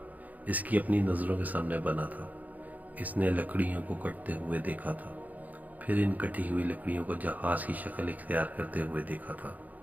اس کی اپنی نظروں کے سامنے بنا تھا۔ اس نے لکڑیوں کو کٹتے ہوئے دیکھا تھا، پھر ان کٹی ہوئی لکڑیوں کو جہاز کی شکل اختیار کرتے ہوئے دیکھا تھا۔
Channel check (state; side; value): late; left; 0.079 ms